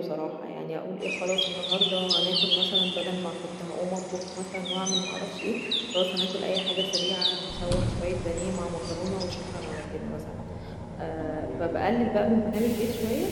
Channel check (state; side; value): identical; both; correlation 1.00